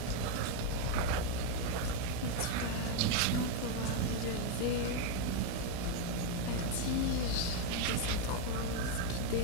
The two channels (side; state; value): both; different; correlation 0.01